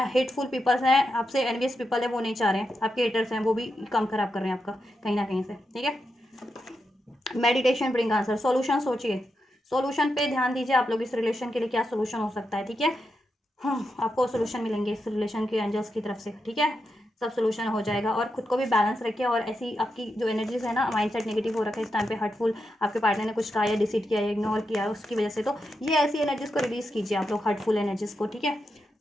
हेटफुल पीपल्स हैं, आपसे एनवियस पीपल है, वो नहीं चाह रहे हैं, आपके हेटर्स हैं, वो भी काम खराब कर रहे हैं आपका कहीं ना कहीं से, ठीक है। मेडिटेशन ब्रिंग आंसर, सॉल्यूशन सोचिए, सॉल्यूशन पे ध्यान दीजिए आप लोग। इस रिलेशन के लिए क्या सॉल्यूशन हो सकता है, ठीक है। आपको सॉल्यूशन मिलेंगे इस रिलेशन के एंजल्स की तरफ से, ठीक है। सब सॉल्यूशन हो जाएगा। और खुद को भी बैलेंस रखिए। और ऐसी आपकी जो एनर्जीज है ना, माइंडसेट नेगेटिव हो रखा है इस टाइम पे, हर्टफुल, आपके पार्टनर ने कुछ कहा या डिसीट किया या इग्नोर किया उसकी वजह से, तो ये ऐसी एनर्जीज को रिलीज कीजिए आप लोग, हर्टफुल एनर्जीज को, ठीक है।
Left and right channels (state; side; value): normal; both; correlation 0.86